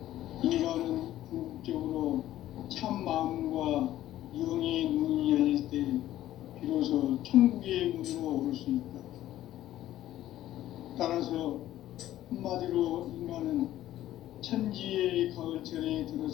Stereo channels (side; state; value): right; quieter; 13.6 dB